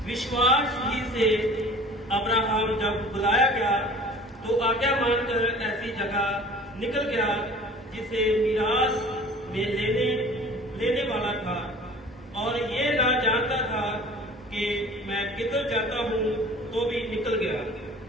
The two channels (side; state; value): both; normal; correlation 0.45